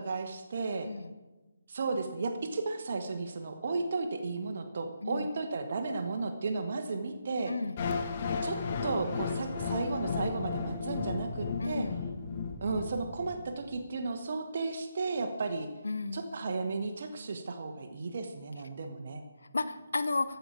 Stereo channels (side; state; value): both; inverted; correlation -0.80